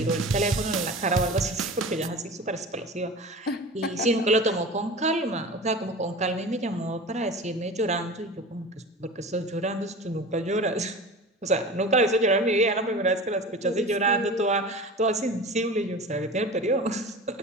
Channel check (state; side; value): normal; both; correlation 0.34